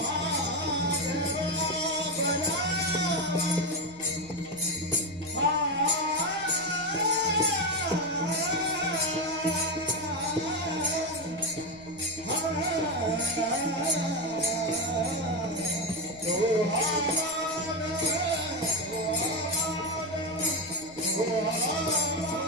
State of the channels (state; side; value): noise; right; rumble, 23 dB below the sound